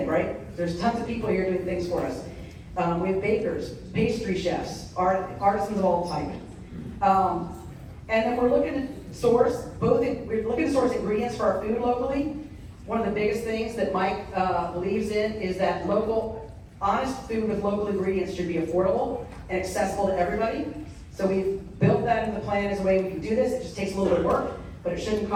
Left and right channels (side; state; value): both; identical; correlation 1.00